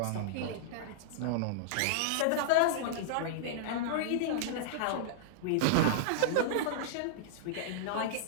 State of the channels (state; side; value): different; both; correlation -0.02